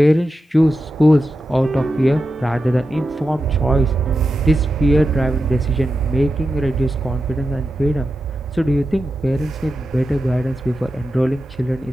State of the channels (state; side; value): normal; both; correlation 0.90